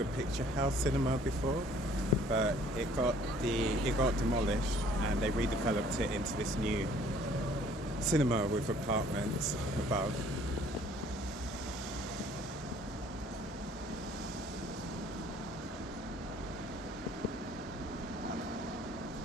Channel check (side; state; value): both; normal; correlation 0.57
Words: picture house cinema before, but it got demolished, and they redeveloped it into this new cinema with apartments above.